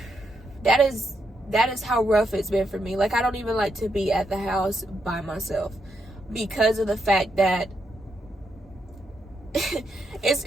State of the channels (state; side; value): normal; both; correlation 0.80